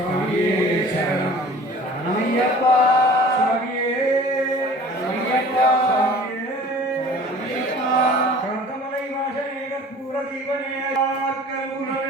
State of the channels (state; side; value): normal; both; correlation 0.46